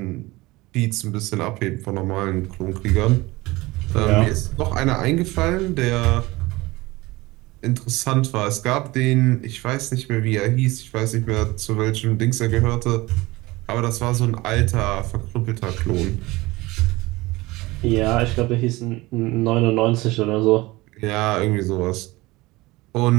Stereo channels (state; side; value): quieter; left; 20.9 dB